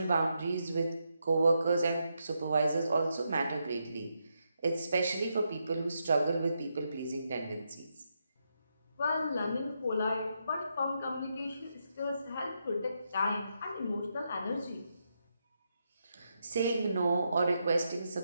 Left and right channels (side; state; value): both; inverted; correlation -0.82